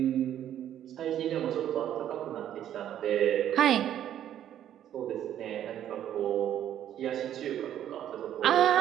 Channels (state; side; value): quieter; left; 10.9 dB